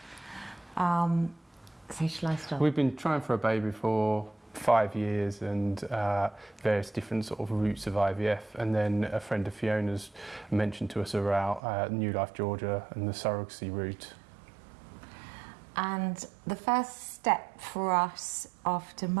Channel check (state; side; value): drops out; left; at 11.6 s